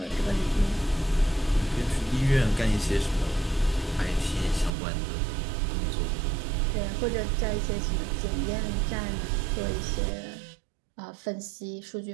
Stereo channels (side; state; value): left; drops out; at 4.7 s